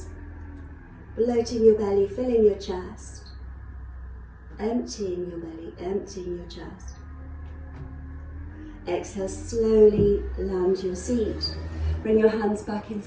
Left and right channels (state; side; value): identical; both; correlation 1.00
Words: bloating your belly, filling your chest. emptying your belly, emptying your chest. Exhale, slowly land your seat. Bring your hands back in